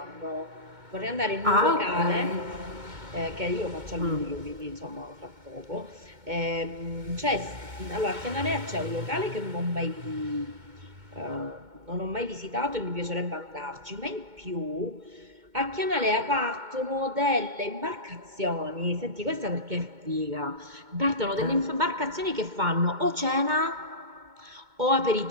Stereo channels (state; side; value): late; left; 2.2 ms